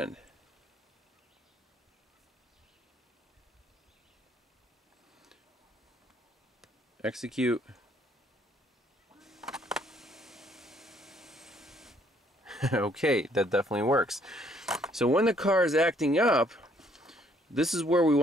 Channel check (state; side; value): normal; both; correlation 0.65